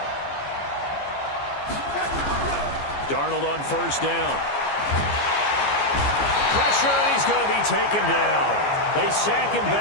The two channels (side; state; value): right; late; 14 ms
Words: Darnold on first down. Pressure, and he's going to be taken down. They sack him